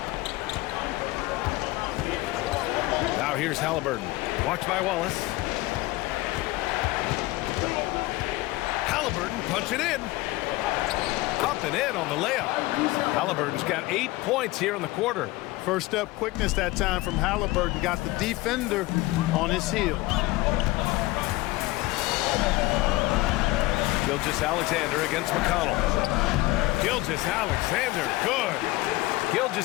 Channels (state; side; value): quieter; right; 19.7 dB